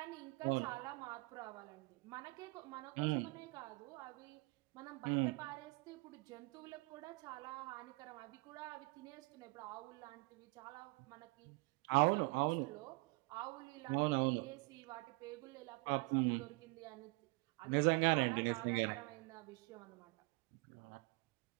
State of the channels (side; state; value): left; quieter; 27.1 dB